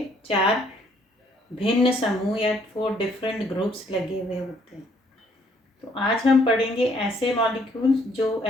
चार भिन्न समूह या 4 डिफरेंट ग्रुप्स लगे हुए होते हैं। तो आज हम पढ़ेंगे ऐसे मॉलिक्यूल्स, जो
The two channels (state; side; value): normal; both; correlation 0.66